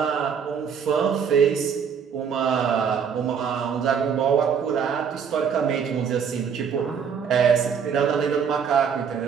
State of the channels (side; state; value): left; quieter; 7.0 dB